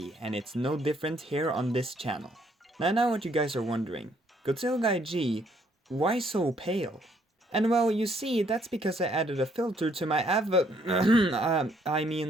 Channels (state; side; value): normal; both; correlation 0.68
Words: and it's no different here on this channel. Now I know what you guys are wondering, Godzilla KAIJU, why so pale? And well, you see, that's because I added a filter to my